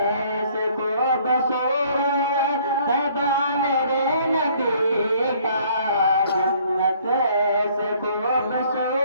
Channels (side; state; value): both; inverted; correlation -0.59